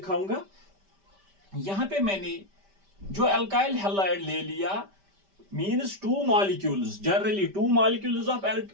यहाँ पे मैंने जो अल्काइल हैलाइड ले लिया, means two molecules, generally two molecules of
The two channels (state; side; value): late; left; 5.1 ms